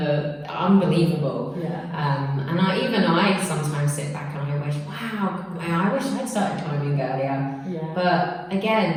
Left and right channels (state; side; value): identical; both; correlation 1.00